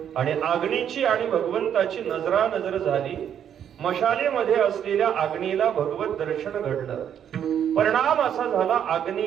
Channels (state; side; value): quieter; left; 9.1 dB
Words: आणि अग्नीची आणि भगवंताची नजरानजर झाली. मशालीमध्ये असलेल्या अग्नीला भगवत दर्शन घडलं. परिणाम असा झाला,